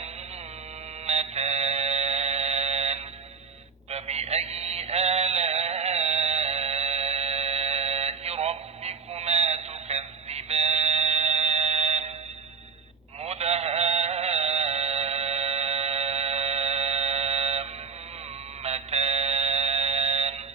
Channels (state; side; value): quieter; left; 5.4 dB